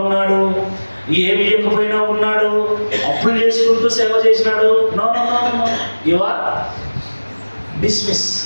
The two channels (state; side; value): inverted; both; correlation -1.00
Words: ఉన్నాడు, ఏమి ఇవ్వకపోయినా ఉన్నాడు, అప్పులు చేసుకుంటూ సేవ చేసినాడు. No, you are dismiss.